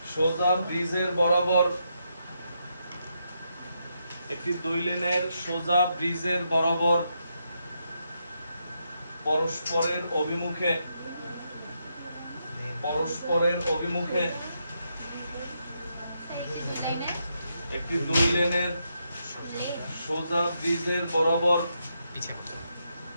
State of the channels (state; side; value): inverted; both; correlation -0.81